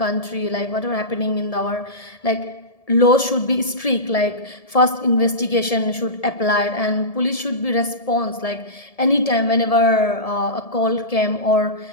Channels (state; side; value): late; right; 1.7 ms